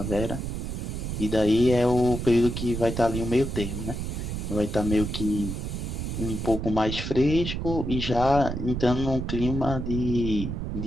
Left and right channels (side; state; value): right; noise; rumble, 4 dB below the sound